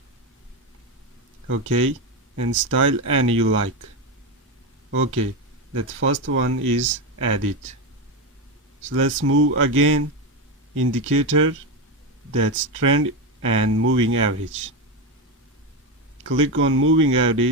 Okay, and style any you like. Okay, that first one is added. So let's move again. Indicator, that's trend and moving average. Click on moving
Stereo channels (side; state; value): both; normal; correlation 0.13